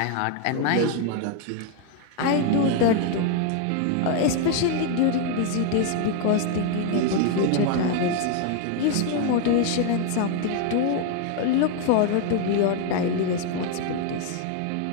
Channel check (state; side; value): different; both; correlation 0.00